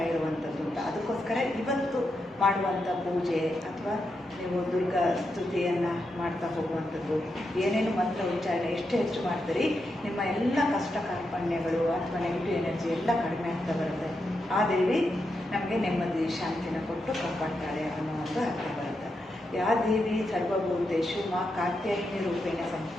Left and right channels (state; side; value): normal; both; correlation 0.85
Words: ಇರುವಂಥದ್ದು ಅಂತ. ಅದಕ್ಕೋಸ್ಕರ ಇವತ್ತು ಮಾಡುವಂಥ ಪೂಜೆ ಅಥವಾ ನೀವು ದುರ್ಗಾ ಸ್ತುತಿಯನ್ನು ಮಾಡ್ತಾ ಹೋಗುವಂಥದ್ದು, ಏನೇನು ಮಂತ್ರ ಉಚ್ಚಾರಣೆ ಎಷ್ಟು ಹೆಚ್ಚು ಮಾಡ್ತೀರಿ, ನಿಮ್ಮ ಎಲ್ಲ ಕಷ್ಟ ಕಾರ್ಪಣ್ಯಗಳು ಅಥವಾ ನೆಗೆಟಿವ್ ಎನರ್ಜಿ ಎಲ್ಲ ಕಡಿಮೆ ಆಗ್ತಾ ಬರುತ್ತೆ. ಆ ದೇವಿ ನಮಗೆ ನೆಮ್ಮದಿ ಶಾಂತಿನ ಕೊಟ್ಟು ಕಾಪಾಡ್ತಾಳೆ ಅನ್ನೋ ಒಂದು ಅರ್ಥ ಬರುತ್ತೆ. ಯಾ ದೇವಿ ಸರ್ವಭೂತೇಶು ಮಾ ಕಾತ್ಯಾಯಿನಿ ರೂಪೇಣ